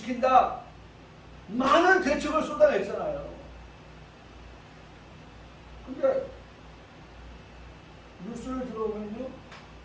많은 대책을 쏟아냈잖아요. 근데 뉴스를 들어보면요,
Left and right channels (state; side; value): identical; both; correlation 1.00